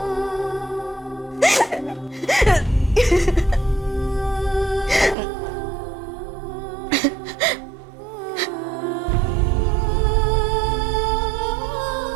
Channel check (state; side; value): drops out; left; at 5.2 s